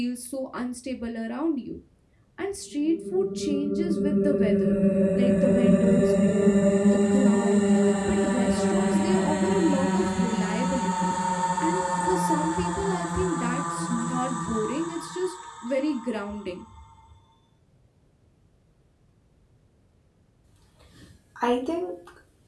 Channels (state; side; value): identical; both; correlation 1.00